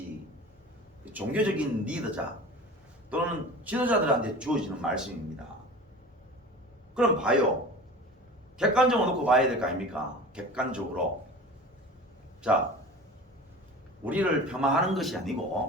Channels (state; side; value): normal; both; correlation 0.37